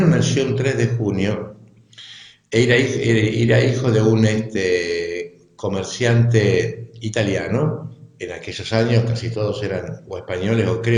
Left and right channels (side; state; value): both; identical; correlation 1.00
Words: nació un 3 de junio, era hijo de un comerciante italiano. En aquellos años casi todos eran o españoles o